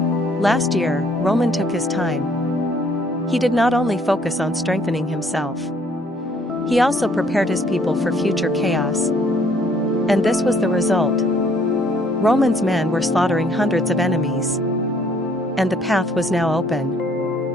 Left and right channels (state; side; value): normal; both; correlation 0.63